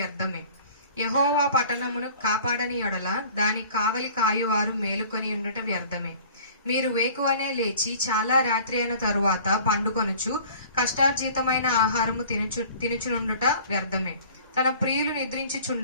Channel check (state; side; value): inverted; both; correlation -0.48